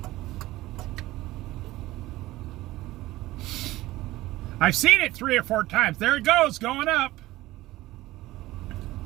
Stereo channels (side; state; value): left; quieter; 17.3 dB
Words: I've seen it 3 or 4 times. There it goes, going up.